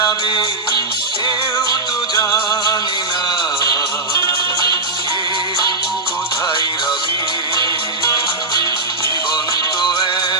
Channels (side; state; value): left; quieter; 3.3 dB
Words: যাবে কেউ তো জানে না কে কোথায় রবে। জীবন তো